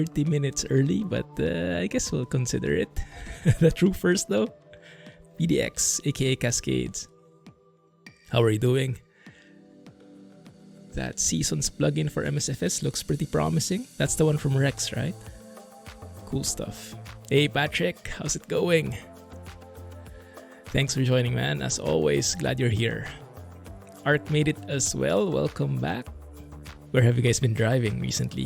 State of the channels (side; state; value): both; identical; correlation 1.00